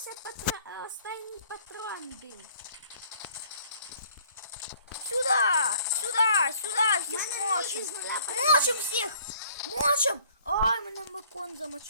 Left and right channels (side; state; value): both; inverted; correlation -0.57